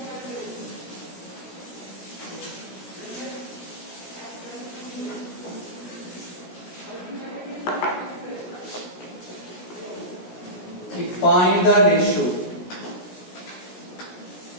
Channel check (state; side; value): late; right; 17 ms